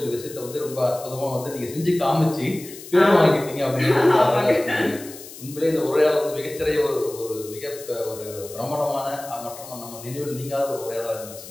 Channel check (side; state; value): left; noise; hiss, 15 dB below the sound